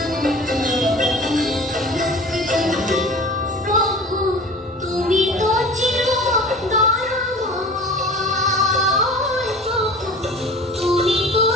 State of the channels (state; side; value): normal; both; correlation 0.41